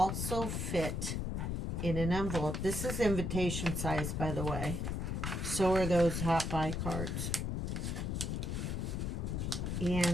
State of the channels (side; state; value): left; noise; rumble, 1 dB below the sound